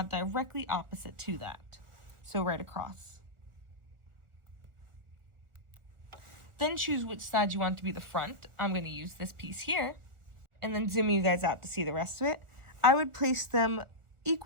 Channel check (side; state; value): left; late; 1.5 ms